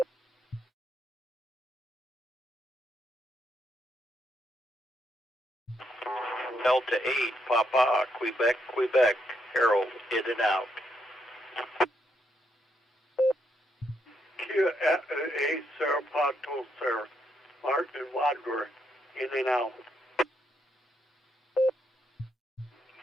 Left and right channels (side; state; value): both; normal; correlation 0.77